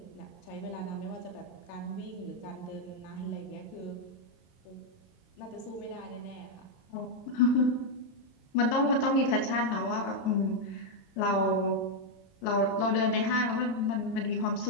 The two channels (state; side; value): late; right; 22 ms